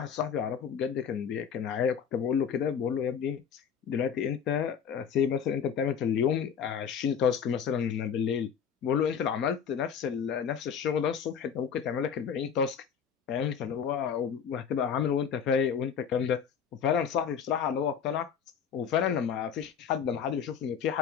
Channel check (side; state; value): right; quieter; 7.4 dB